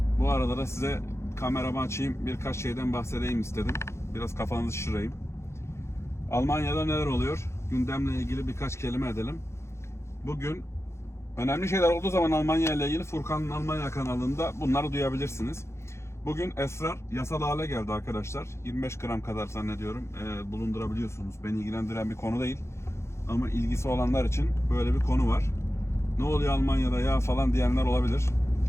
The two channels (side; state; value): right; late; 0.13 ms